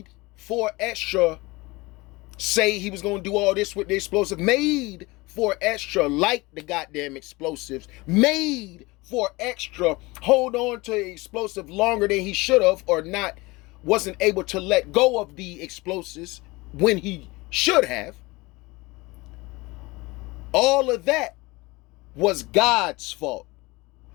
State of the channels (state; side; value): quieter; right; 22.9 dB